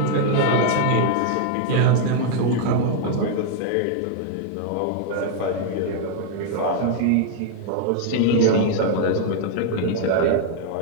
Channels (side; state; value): both; different; correlation -0.01